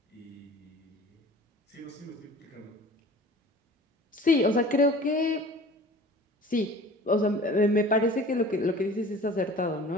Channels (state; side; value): normal; both; correlation 0.44